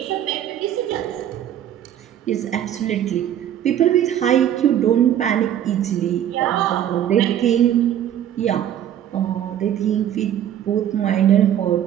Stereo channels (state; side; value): quieter; left; 10.7 dB